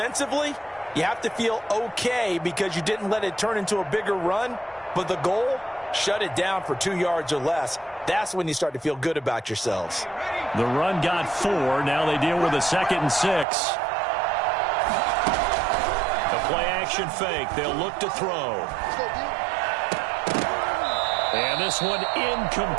you have to feel okay because you didn't let it turn into a bigger run. But the goal, shut it down for 2 yards or less. That's when you start to feel good about yourselves. The run got 4. Now they deal with a 2nd and 6. The play action fake. They'll look to throw. And this one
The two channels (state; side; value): drops out; left; at 13.5 s